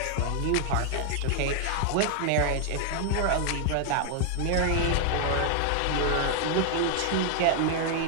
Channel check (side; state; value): both; different; correlation 0.00